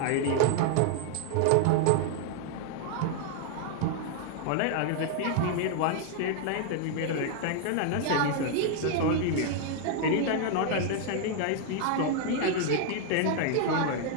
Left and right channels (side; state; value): both; different; correlation 0.00